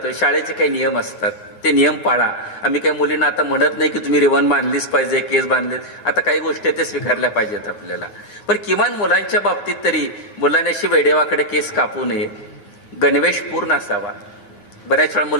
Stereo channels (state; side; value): late; right; 9.9 ms